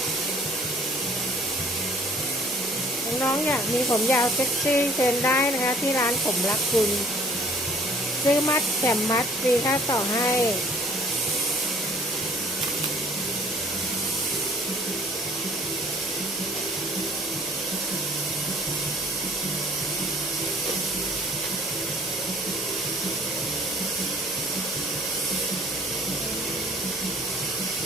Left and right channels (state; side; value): normal; both; correlation 0.55